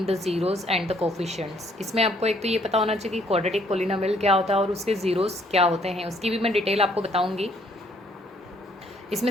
the zeros and the coefficients. इसमें आपको एक तो ये पता होना चाहिए कि क्वाड्रेटिक पोलिनोमियल क्या होता है और उसके ज़ीरोज़ क्या होते हैं, उसकी भी मैं डिटेल आपको बताऊँगी।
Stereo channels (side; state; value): both; normal; correlation 0.65